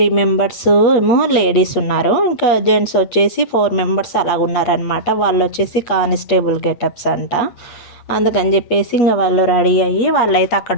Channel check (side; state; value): right; late; 8.3 ms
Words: మెంబర్స్ ఏమో లేడీస్ ఉన్నారు, ఇంకా జెంట్స్ వచ్చేసి 4 మెంబర్స్ అలాగ ఉన్నారనమాట. వాళ్ళు వచ్చేసి కానిస్టేబుల్ గెటప్స్ అంట. అందుకని చెప్పేసి ఇంకా వాళ్ళు రెడీ అయ్యి వాళ్ళైతే